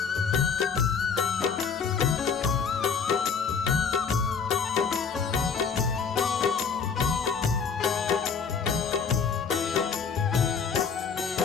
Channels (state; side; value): quieter; right; 6.1 dB